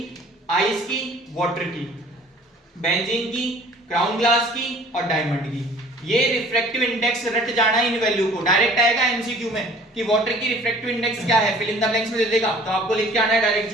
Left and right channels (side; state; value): both; normal; correlation 0.50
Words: आइस की, वाटर की, बेंजीन की, क्राउन ग्लास की और डायमंड की। ये रिफ्रैक्टिव इंडेक्स रट जाना है इन वैल्यू को। डायरेक्ट आएगा एमसीक्यू में कि वाटर की रिफ्रैक्टिव इंडेक्स क्या है, फिल इन द ब्लैंक्स में दे देगा, तो आपको लिख के आना है डायरेक्ट